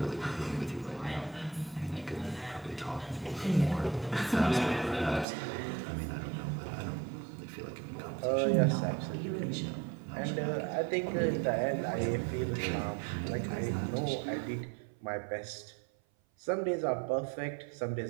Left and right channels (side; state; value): left; drops out; at 5.2 s